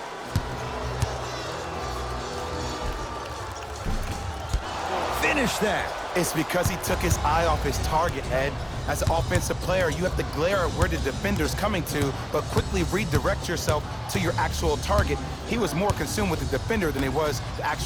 Finish that. It's because he took his eye off his target, Ed. As an offensive player, you have to glare at where the defender's coming to, but quickly redirect yourself to your actual target. He was more consumed with the defender than he was the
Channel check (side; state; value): both; identical; correlation 1.00